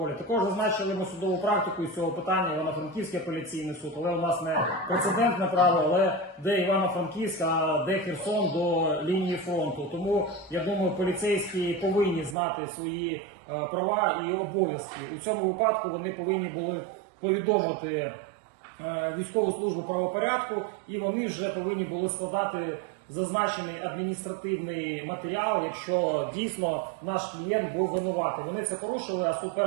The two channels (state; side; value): drops out; left; at 12.4 s